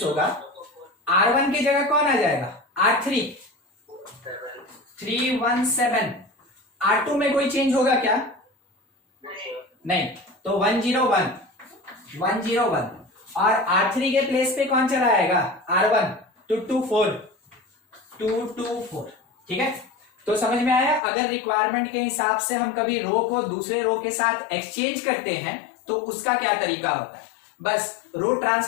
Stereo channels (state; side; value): drops out; right; at 21.0 s